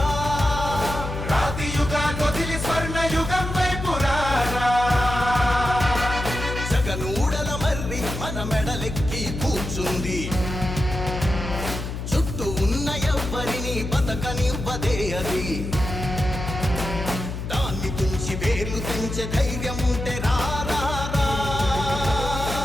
రాతి యుగాన్ని వదిలి స్వర్ణ యుగం వైపు రారా జగనూడల మర్రి మన మెడలెక్కి కూర్చుంది చుట్టూ ఉన్న ఎవ్వరిని బతకనివ్వదే అది దాన్ని తుంచి వేర్లు తెంచే ధైర్యం ఉంటే రారా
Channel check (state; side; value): noise; left; hum, 6 dB below the sound